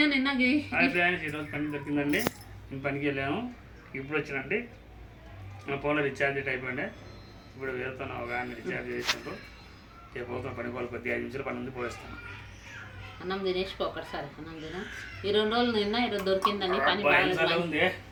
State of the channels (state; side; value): identical; both; correlation 1.00